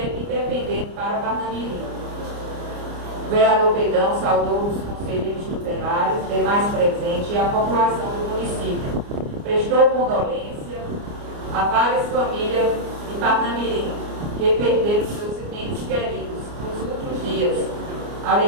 Independente para Parnamirim. O vereador Pedão saudou os conselheiros tutelares, demais presentes e a população do município. Prestou condolência a várias famílias de Parnamirim que perderam seus entes queridos nos últimos dias.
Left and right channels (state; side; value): late; left; 29 ms